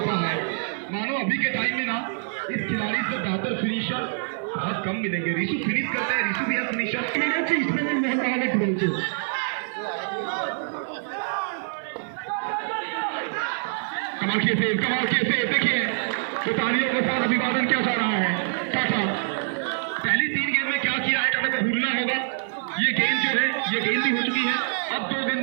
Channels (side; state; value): left; silent; digital silence